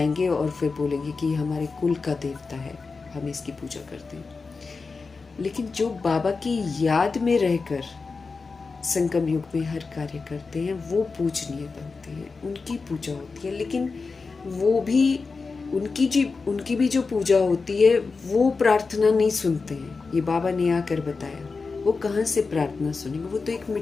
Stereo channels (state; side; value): quieter; right; 4.4 dB